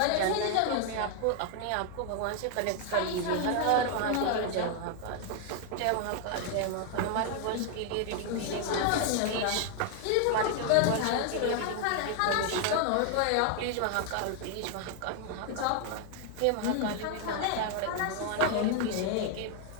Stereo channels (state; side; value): different; both; correlation 0.00